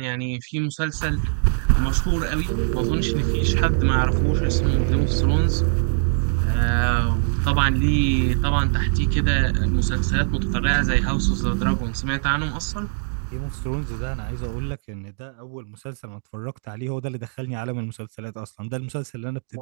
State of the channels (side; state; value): left; silent; digital silence